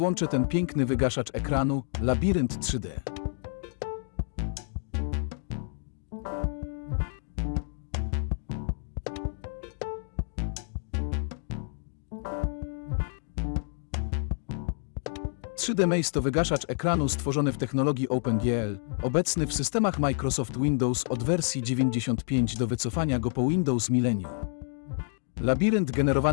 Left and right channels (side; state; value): right; silent; 55 dB below the other